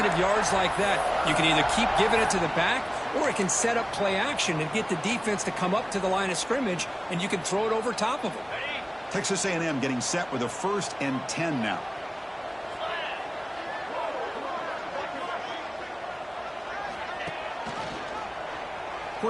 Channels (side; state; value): both; identical; correlation 1.00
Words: yards like that. You can either keep giving it to the back, or it can set up play action and get the defense to come up to the line of scrimmage, and you can throw it over top of them. Texas A&M getting set with a 1st and 10 now.